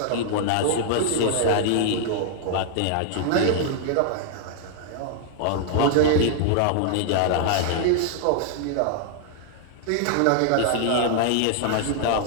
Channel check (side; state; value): both; different; correlation -0.01